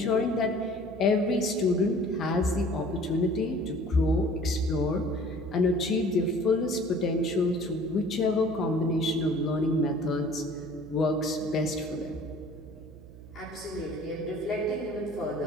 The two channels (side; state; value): right; noise; hum, 18 dB below the sound